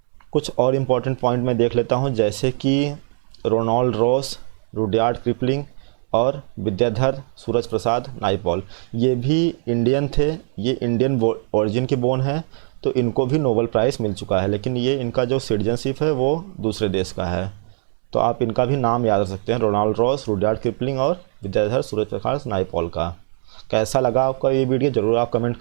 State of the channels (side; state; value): left; silent; 65 dB below the other